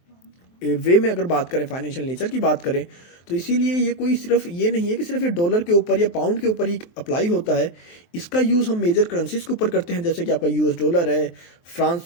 वे में अगर बात करें, फाइनेंशियल नेचर की बात करें, तो इसीलिए ये कोई सिर्फ ये नहीं है कि सिर्फ ये डॉलर के ऊपर या पाउंड के ऊपर ही अप्लाई होता है। इसका यूज़ हम मेजर करेंसीज के ऊपर करते हैं, जैसे कि आपका यूएस डॉलर है,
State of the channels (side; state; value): right; late; 23 ms